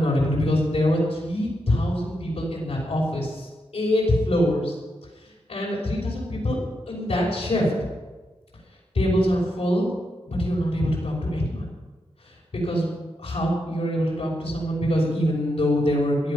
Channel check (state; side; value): normal; both; correlation 0.83